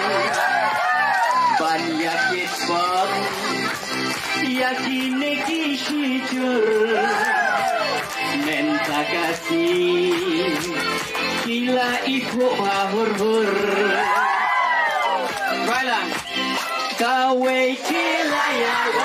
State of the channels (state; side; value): identical; both; correlation 1.00